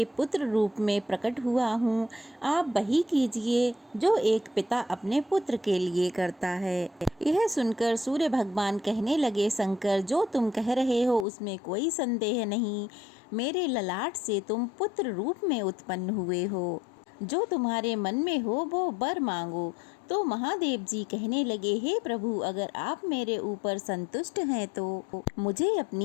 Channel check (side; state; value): right; drops out; at 11.2 s